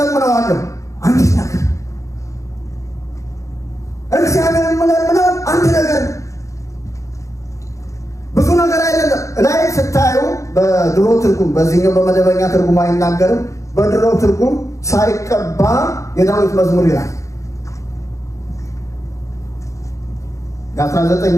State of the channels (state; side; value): late; right; 0.15 ms